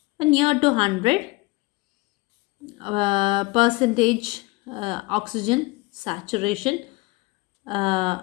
near to 100% oxygen saturation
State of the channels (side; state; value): right; quieter; 23.5 dB